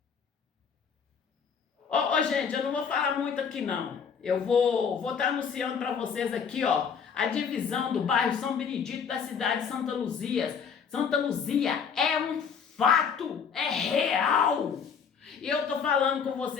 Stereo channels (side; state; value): right; quieter; 6.6 dB